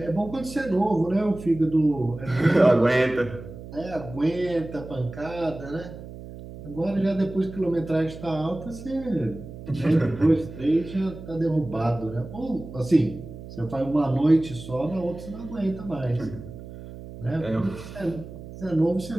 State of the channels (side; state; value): right; noise; hum, 13 dB below the sound